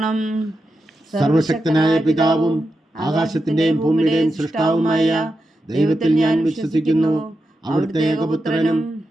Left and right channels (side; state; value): both; normal; correlation 0.88